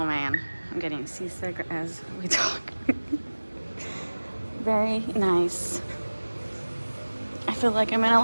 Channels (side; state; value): both; inverted; correlation -1.00